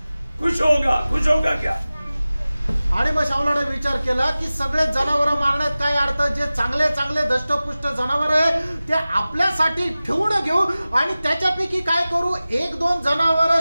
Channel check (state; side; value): inverted; both; correlation -0.97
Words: खुश होगा क्या? आणि मग शाऊलाने विचार केला की सगळे जनावर मारण्यात काय अर्थ, जे चांगले चांगले धष्टपुष्ट जनावर आहे ते आपल्यासाठी ठेवून घेऊ आणि त्याच्यापैकी काय करू, 1-2 जनावर